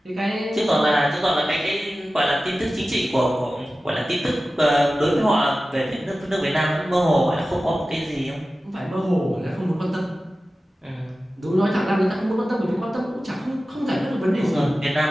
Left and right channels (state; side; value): normal; both; correlation 0.95